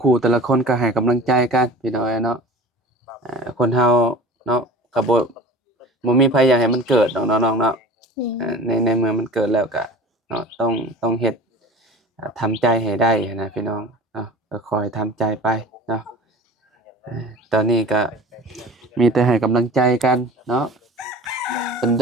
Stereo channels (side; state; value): both; normal; correlation 0.39